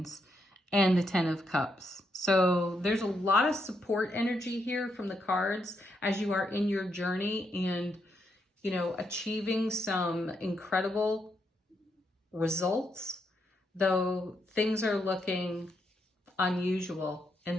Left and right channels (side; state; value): both; normal; correlation 0.79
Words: and the 10 of cups. So there's a lot of support energy here from the cards as you are in your journey and, you know, achieving some incredible results, though things are looking unusual. And